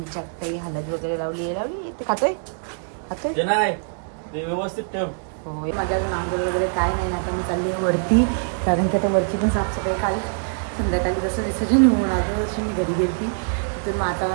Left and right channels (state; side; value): silent; left; digital silence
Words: काही हलद वगैरे लावली ते खातोय व्यवस्थित ठेव. हो, माझ्या अजून आंघोळ वगैरे काय नाही. आता मी चालली आहे वरती, कारण की आता वरची पण साफसफाई काल संध्याकाळी जसं विसर्जन होऊन आलं तशी मी घरी गेली. तिथून मग